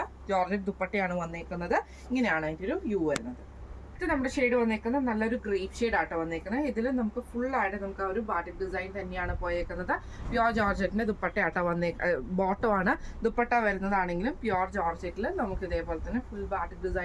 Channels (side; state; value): both; identical; correlation 1.00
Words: ജോർജറ്റ് ദുപ്പട്ടയാണ് വന്നേക്കുന്നത്. ഇങ്ങനെയാണ് അതിൻ്റെ ഒരു വ്യൂ വരുന്നത്. ഇത് നമ്മുടെ ഷെയ്ഡ് വന്നേക്കുന്നത് നല്ലൊരു ഗ്രേപ്പ് ഷെയ്ഡ് ആട്ടോ വന്നേക്കുന്നത്. ഇതിൽ നമുക്ക് ഫുള്ളായിട്ട് നമുക്ക് ആ ഒരു ബാട്ടിക് ഡിസൈൻ തന്നെയാണ് പോയേക്കുന്നത്. പ്യോർ ജോർജറ്റിന്റെ ദുപ്പട്ട ആട്ടോ ബോട്ടം ആണ്. ദുപ്പട്ട വരുന്നതാണെങ്കിലും പ്യോർ ജോർജറ്റിൽ നമുക്ക് ഇതേപോലെ തന്നെ ഫുൾ ബാട്ടിക്